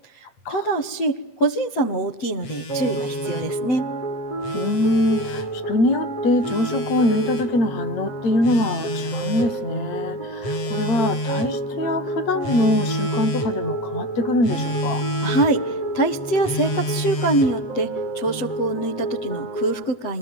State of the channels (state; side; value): late; right; 8.2 ms